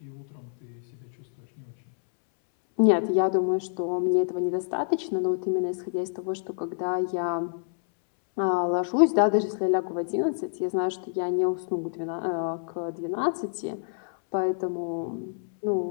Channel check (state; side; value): silent; right; 60 dB below the other